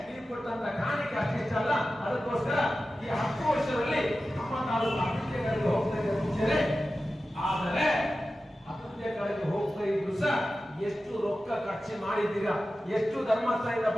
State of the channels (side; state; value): both; normal; correlation 0.94